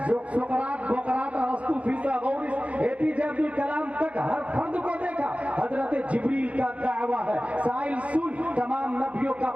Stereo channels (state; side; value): late; left; 0.065 ms